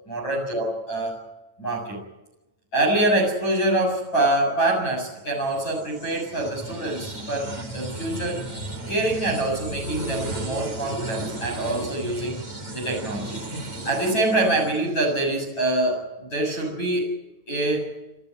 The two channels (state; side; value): late; right; 9.1 ms